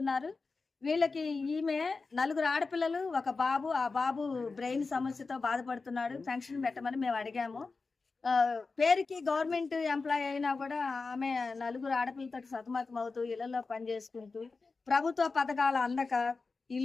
వీళ్ళకి ఈమె 4 ఆడపిల్లలు, ఒక బాబు. ఆ బాబు బ్రెయిన్ సమస్యతో బాధపడుతున్నాడు. పెన్షన్ పెట్టమని మేము అడిగాము. పేరుకి గవర్నమెంట్ ఎంప్లాయీ అయినా కూడా ఆమె 4 ఆడపిల్లతో సతమతం అవుతూ ఇళ్లలో పనిచేసుకుంటూ, ప్రభుత్వ పథకాలు అందక,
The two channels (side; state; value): right; quieter; 4.1 dB